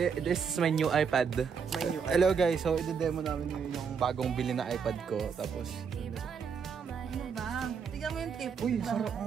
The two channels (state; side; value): quieter; left; 6.4 dB